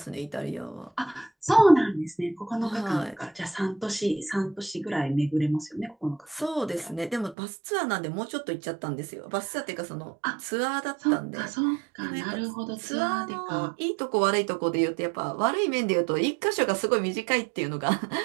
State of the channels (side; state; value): left; drops out; at 7.4 s